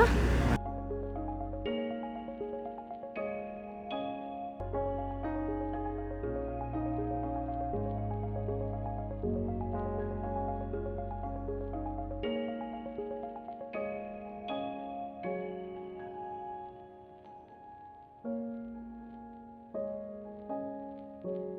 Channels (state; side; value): identical; both; correlation 1.00